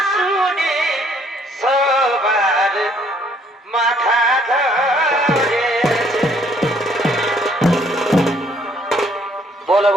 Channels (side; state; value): both; normal; correlation 0.64